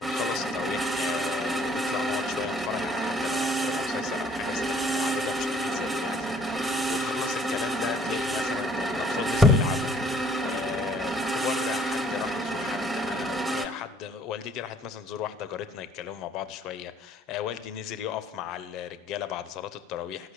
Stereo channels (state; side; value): normal; both; correlation 0.59